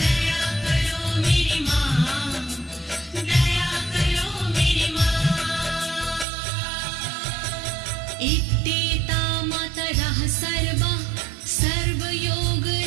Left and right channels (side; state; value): left; drops out; at 6.2 s